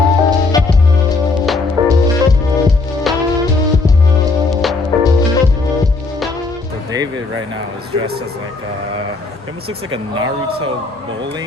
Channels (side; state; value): right; quieter; 3.7 dB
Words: David right now is dressed as like he almost looks like a Naruto